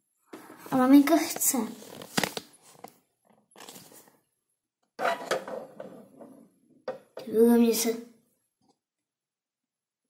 A maminka chce. Mě se...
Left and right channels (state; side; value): identical; both; correlation 1.00